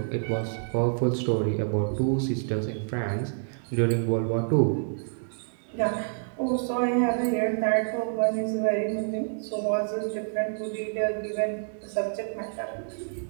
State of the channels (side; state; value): left; silent; digital silence